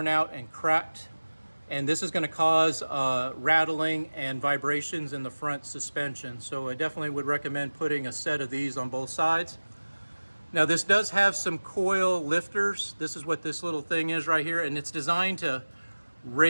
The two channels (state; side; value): inverted; both; correlation -1.00